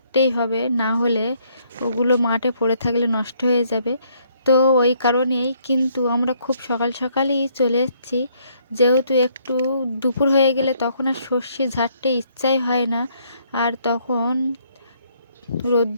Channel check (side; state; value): both; inverted; correlation -0.68